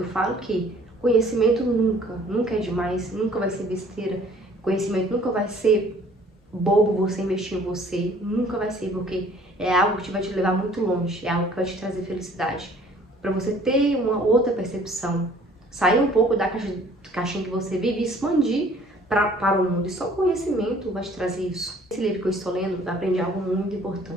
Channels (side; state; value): both; normal; correlation 0.55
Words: falo que conhecimento nunca é demais, nunca vai ser besteira. Conhecimento nunca vai ser bobo você investir em você, nunca vai ser, porque é algo que vai te levar muito longe, é algo que vai te trazer felicidade. Para você ter uma outra percepção, sair um pouco da caixinha que você vive e expandir para o mundo. E só o conhecimento vai te trazer isso. Esse livro que eu estou lendo, eu aprendi algo muito